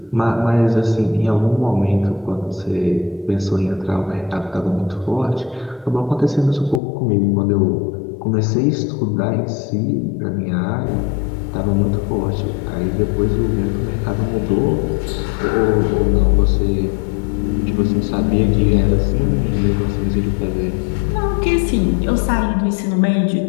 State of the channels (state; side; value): drops out; right; at 6.8 s